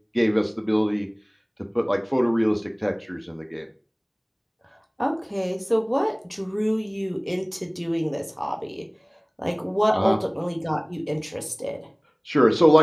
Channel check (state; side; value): identical; both; correlation 1.00